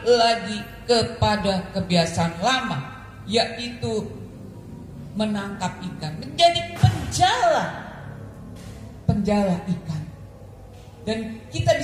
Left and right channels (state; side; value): identical; both; correlation 1.00